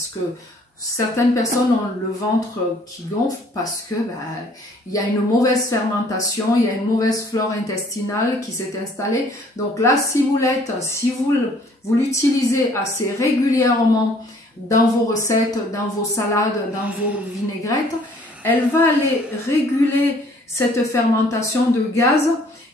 que certaines personnes ont le ventre qui gonfle parce que il y a une mauvaise fermentation, il y a une mauvaise flore intestinale qui s'est installée. Donc, la ciboulette, si vous l'utilisez assez régulièrement dans vos recettes, dans vos salades, dans vos vinaigrettes, elle va aller réguler cette fermentation de gaz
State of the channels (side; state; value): both; normal; correlation 0.58